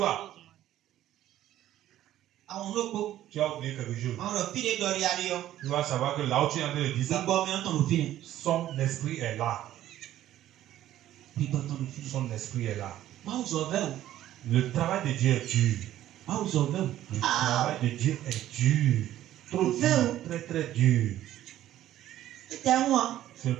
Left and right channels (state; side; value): quieter; left; 13.0 dB